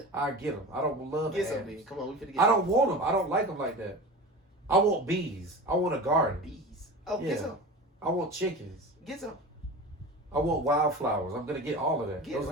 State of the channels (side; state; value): both; normal; correlation 0.32